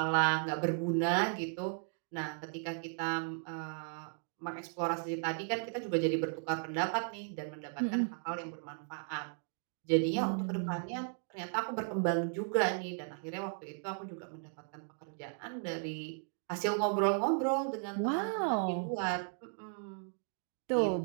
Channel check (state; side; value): silent; left; 54 dB below the other